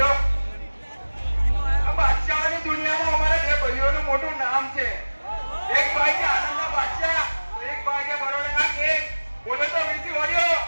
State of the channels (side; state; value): both; inverted; correlation -1.00